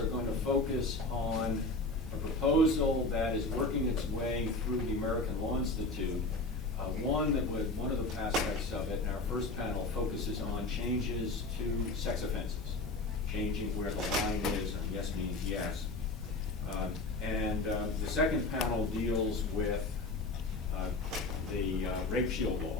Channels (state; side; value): quieter; right; 3.1 dB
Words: going to focus on a proposal that is working its way through the American Law Institute. One of the aspects of it in our first panel focuses on changes to sex offenses, changing where the line is, and yes means yes. And the second panel deals with the rape shield